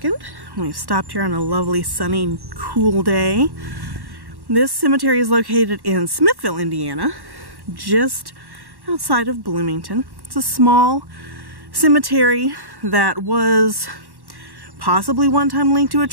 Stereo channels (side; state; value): left; late; 1.1 ms